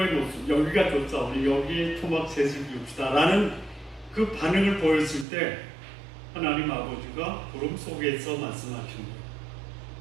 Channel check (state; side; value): drops out; left; at 5.2 s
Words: 모습 여기가 좋사오니 여기에 토막셋을 비웁시다 라는 그 반응을 보였을 때 하나님 아버지가 구름 속에서 말씀하신 거예요.